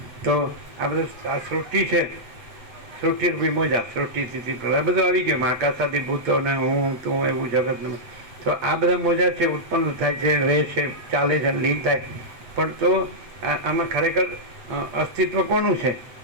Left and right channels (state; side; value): late; left; 8.1 ms